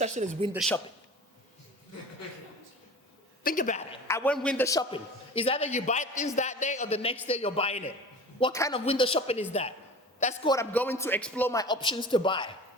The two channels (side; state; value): both; normal; correlation 0.38